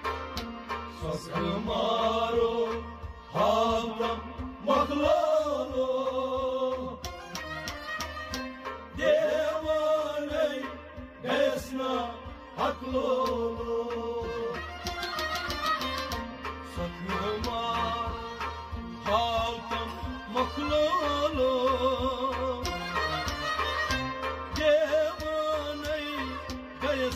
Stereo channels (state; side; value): identical; both; correlation 1.00